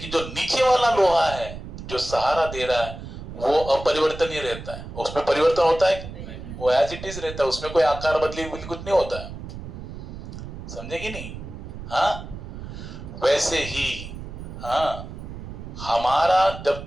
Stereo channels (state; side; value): noise; right; rumble, 10 dB below the sound